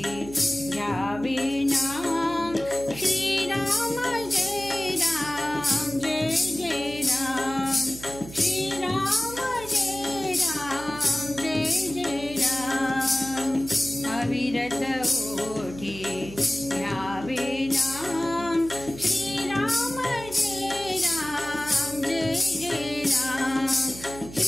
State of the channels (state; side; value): noise; right; hum, 14 dB below the sound